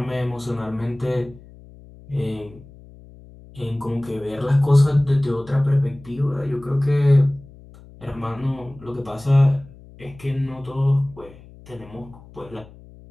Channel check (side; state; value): left; noise; hum, 21 dB below the sound